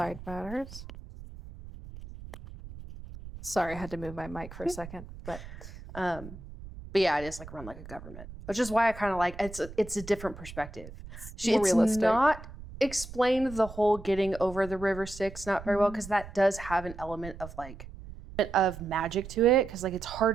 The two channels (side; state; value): right; noise; rumble, 14 dB below the sound